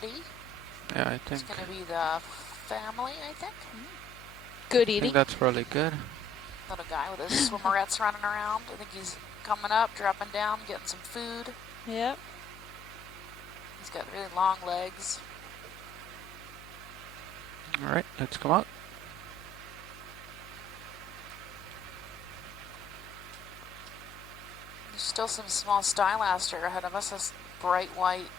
Yeah, I think. It's going to be the family, I think. Good I eating. think that's probably good. Little guy with his swimmerettes running around. I think he's coming up, dropping down, getting some food. Yep. He's got really long legs. All right, let's come out. There's still some small stylaster ahead of us. This bright white,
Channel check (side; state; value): left; noise; hum, 19 dB below the sound